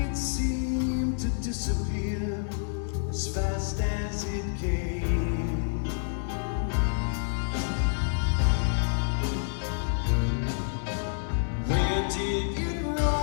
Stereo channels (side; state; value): right; silent; digital silence